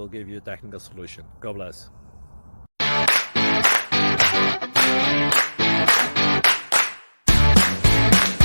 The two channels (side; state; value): both; inverted; correlation -1.00